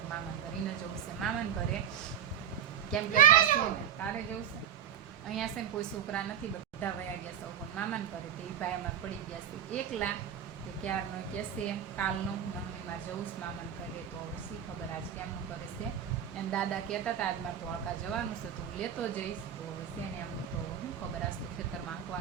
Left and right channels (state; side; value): quieter; left; 9.1 dB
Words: ઘર એને જવું છે મામાન ઘરે. કેમ કે છે ને તારે જવું છે અહીંયા છે ને કોઈ છોકરા નથી, બધા વયા ગયા છે પણ મામાન ઘરે. તે ભાઈ અમારે પડી ગયા છે એકલા. તે ક્યારનો કહેશે કાલનો મમ્મીમાં જવું છે મામાન ઘરે. તો હવે શી ખબર આજ કેમનું કરે છે. એમ દાદા કહેતા હતા આજ મારે ધોળકા જવાનું છે તો હું લેતો જઈશ. તો હવે છે ને એમનું તો શું ખબર, આજ તો ખેતરમાં